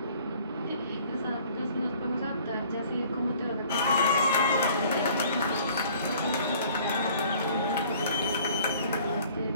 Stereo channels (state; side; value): inverted; both; correlation -0.54